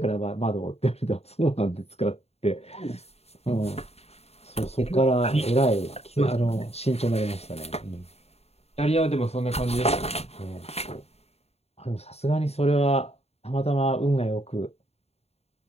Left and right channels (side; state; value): right; late; 0.30 ms